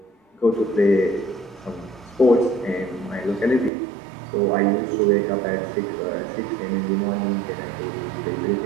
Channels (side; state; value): left; drops out; at 3.7 s